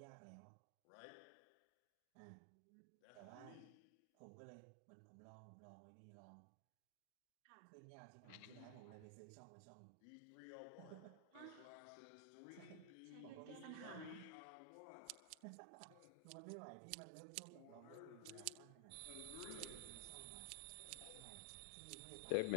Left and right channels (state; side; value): different; both; correlation 0.00